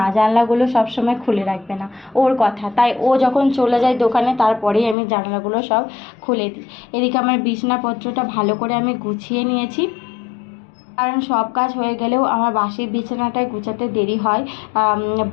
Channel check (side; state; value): right; drops out; at 5.0 s